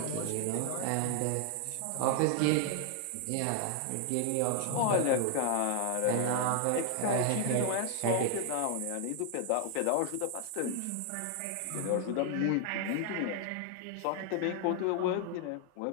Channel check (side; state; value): both; different; correlation 0.00